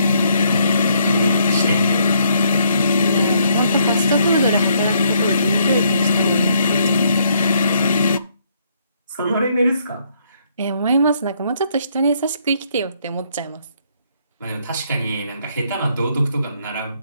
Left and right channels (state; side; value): inverted; both; correlation -0.69